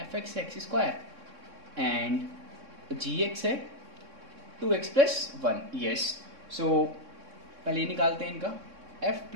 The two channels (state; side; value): late; left; 3.6 ms